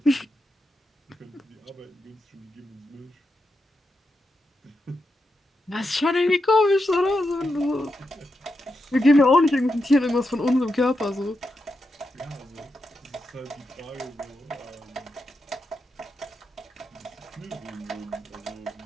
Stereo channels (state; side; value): normal; both; correlation 0.86